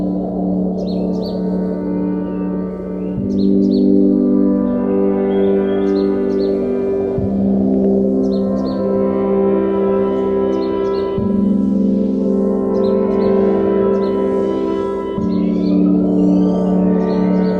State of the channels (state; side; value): identical; both; correlation 1.00